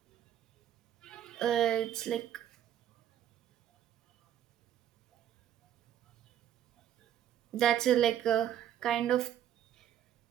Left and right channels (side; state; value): left; quieter; 10.6 dB